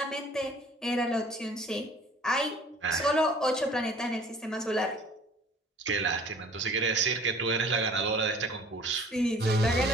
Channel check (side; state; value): both; normal; correlation 0.51